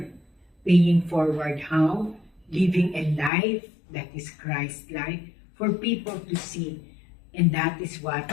Paying forward how? Living a life that is Christ-like for people to see. And that is what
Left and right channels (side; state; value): right; drops out; at 3.3 s